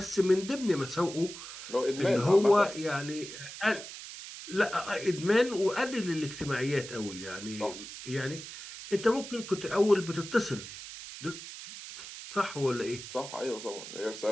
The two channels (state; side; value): noise; right; hiss, 11 dB below the sound